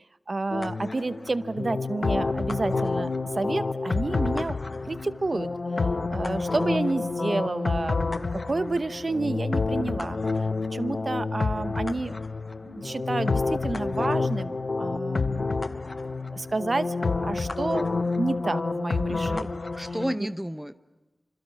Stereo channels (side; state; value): both; normal; correlation 0.94